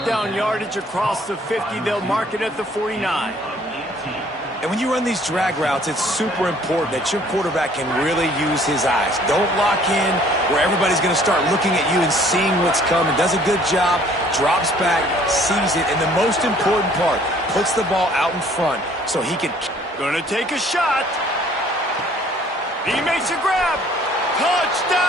down yardage across the 50. They'll mark it at the 49. And when you run these drag routes, it's super important that your quarterback can really use his eyes. Don't lock in where everybody's going to start looking at you and seeing what's coming. Does a good job, drops back, sees it, and the most important part, puts the ball out in front so he can... Gonna take a shot. He makes a grab.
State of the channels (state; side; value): normal; both; correlation 0.58